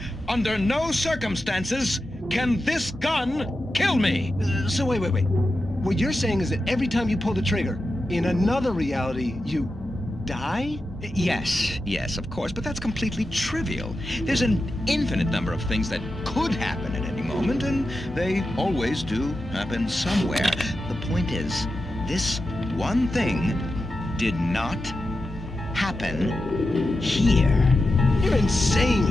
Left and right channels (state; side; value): normal; both; correlation 0.90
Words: Under no circumstances can this gun kill me. So wait. What you're saying is that every time you pull the trigger, in another reality, you die? Yes, of course, but that's completely trivial. There's an infinite number of things that could happen at any moment, and they always do happen somewhere. The point is, this one thing did not happen here. You're